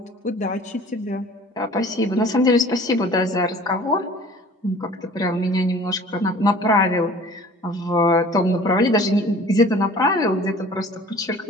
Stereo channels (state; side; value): normal; both; correlation 0.47